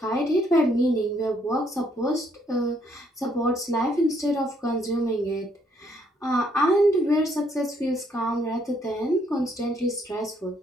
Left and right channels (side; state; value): both; normal; correlation 0.70